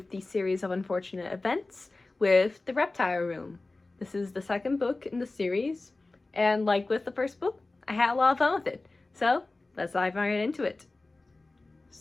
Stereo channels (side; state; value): right; quieter; 3.2 dB